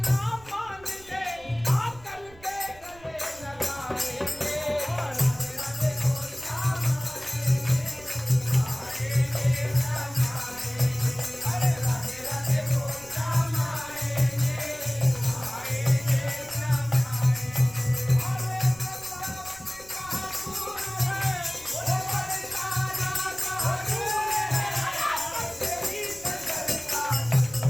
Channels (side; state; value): right; noise; rumble, 23 dB below the sound